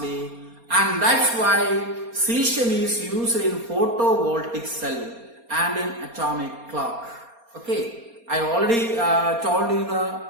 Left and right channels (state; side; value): late; left; 4.3 ms